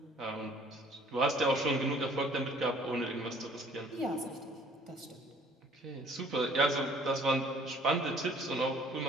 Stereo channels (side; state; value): both; normal; correlation 0.56